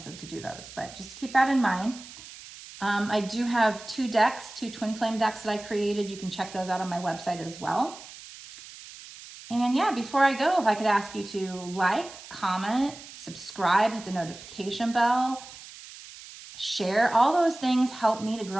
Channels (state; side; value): noise; right; hiss, 16 dB below the sound